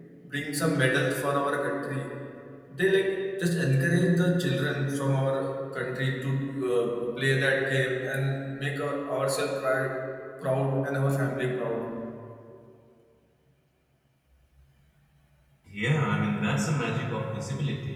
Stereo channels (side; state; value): both; identical; correlation 1.00